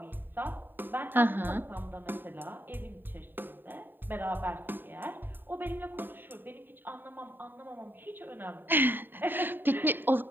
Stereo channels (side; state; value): left; late; 0.094 ms